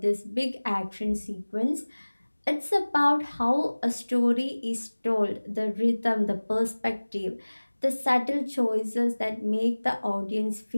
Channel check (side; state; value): both; inverted; correlation -1.00